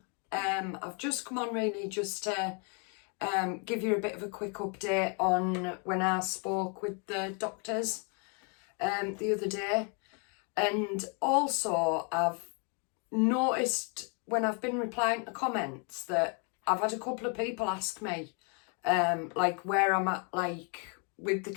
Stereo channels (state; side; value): quieter; right; 37.3 dB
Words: I've just come on really just to give you a bit of a quick update on when I spoke with the doctors the other day, and also I've noticed when I've been replying to comments that I've had a couple of people ask me like where I'm at like with the